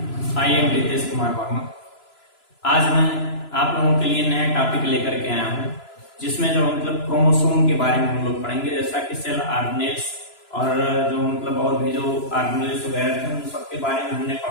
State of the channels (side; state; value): right; late; 3.0 ms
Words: I am Ritesh Kumar Verma. आज मैं आप लोगों के लिए नया टॉपिक लेकर के आया हूँ, जिसमें जो क्रोमोसोम के बारे में हम लोग पढ़ेंगे। जैसा कि सेल ऑर्गेनेल्स और जो और भी जो ऑर्गेनेल्स वगैरह थे उन सब के बारे में हमने